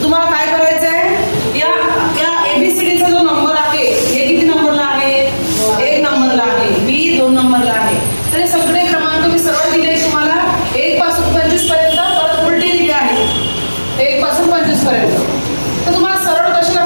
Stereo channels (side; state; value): both; inverted; correlation -1.00